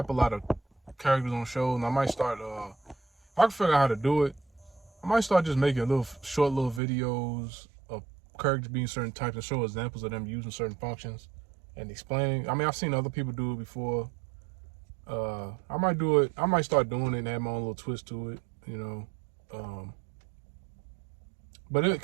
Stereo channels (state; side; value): drops out; left; at 6.8 s